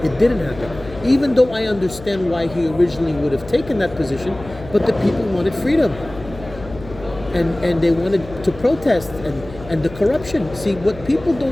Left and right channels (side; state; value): left; noise; hum, 16 dB below the sound